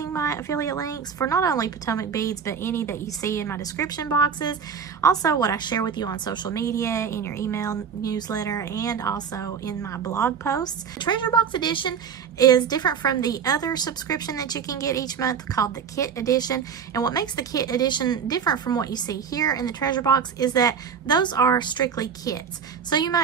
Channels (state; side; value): quieter; left; 7.0 dB